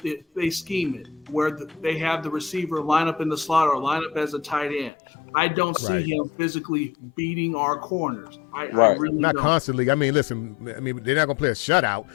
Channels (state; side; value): drops out; right; at 4.9 s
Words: they scheme it, where they have the receiver line up in the slot or line up as a tight end. I don't see him physically beating our corners. I really not don't. Constantly. I mean, listen. I mean, they're not gonna play a shutout.